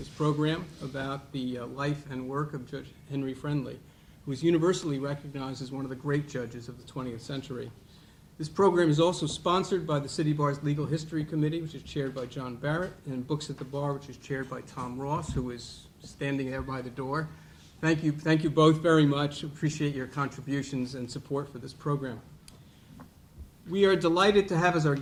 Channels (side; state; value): both; identical; correlation 1.00